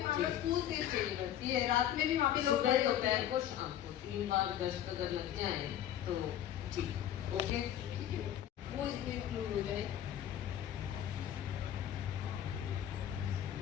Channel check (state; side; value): quieter; right; 11.1 dB